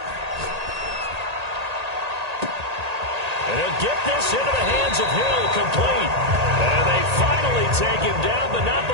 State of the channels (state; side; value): late; left; 1.8 ms